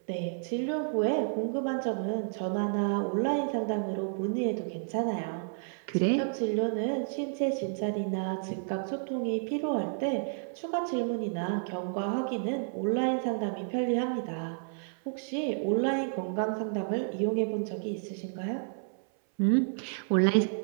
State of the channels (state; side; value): silent; left; 57 dB below the other